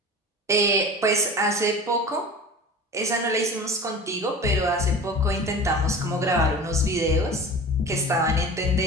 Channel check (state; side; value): normal; both; correlation 0.36